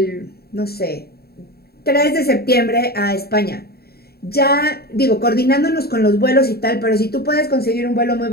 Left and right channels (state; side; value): late; right; 0.45 ms